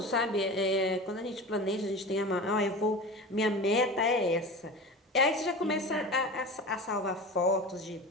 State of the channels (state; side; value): normal; both; correlation 0.32